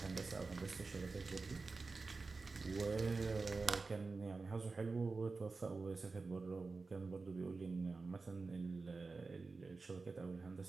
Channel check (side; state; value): left; quieter; 4.0 dB